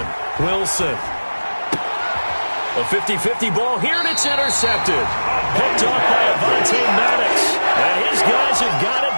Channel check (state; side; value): inverted; both; correlation -1.00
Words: Wilson. A 50-50 ball here, and it's intercepted. Picked off by Avonte Maddox. And his guys have got